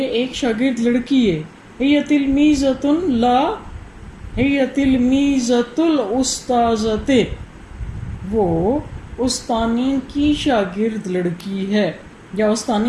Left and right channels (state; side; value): identical; both; correlation 1.00